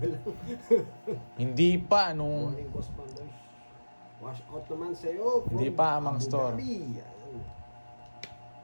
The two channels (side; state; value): both; inverted; correlation -1.00